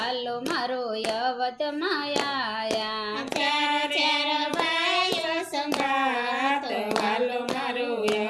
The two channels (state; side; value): identical; both; correlation 1.00